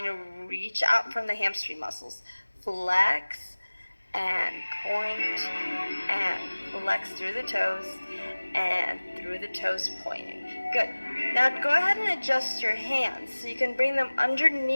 to reach out from the hamstring muscles. Flex, and point, and flex through the toes, and through the toes pointing. Good. Now go ahead and adjust your hands so you can bring them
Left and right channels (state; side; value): inverted; both; correlation -1.00